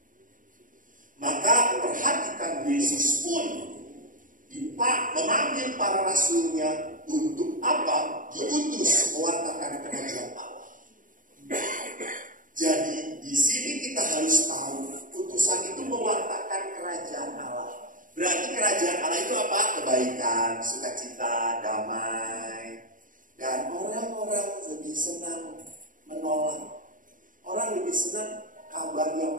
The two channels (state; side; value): late; left; 0.39 ms